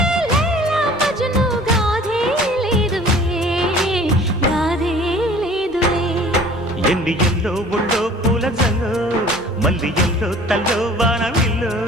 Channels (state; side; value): normal; both; correlation 0.48